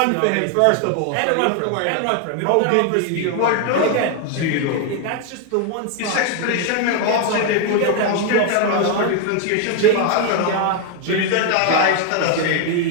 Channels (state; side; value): different; both; correlation 0.01